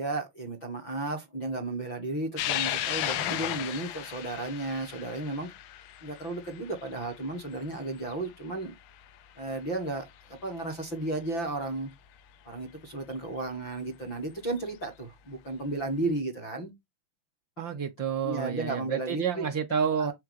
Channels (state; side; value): late; right; 5.9 ms